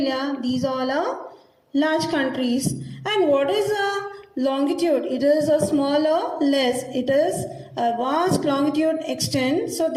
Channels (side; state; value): both; identical; correlation 1.00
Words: These all are large countries. And what is a longitude? It is a smaller, less. It is a vast longitude extent. So